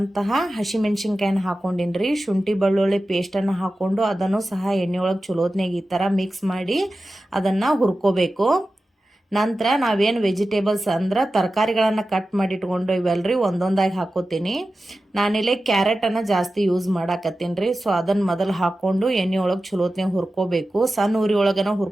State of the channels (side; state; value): both; normal; correlation 0.94